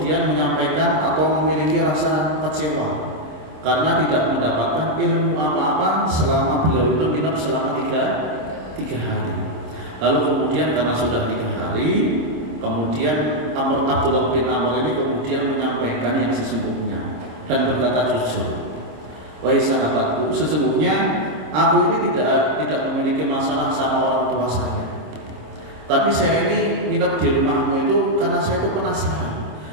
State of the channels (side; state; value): left; late; 26 ms